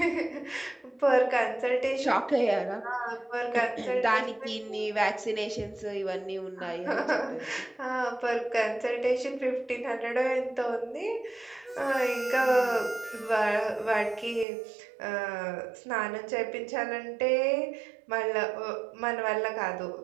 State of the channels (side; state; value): left; drops out; at 14.5 s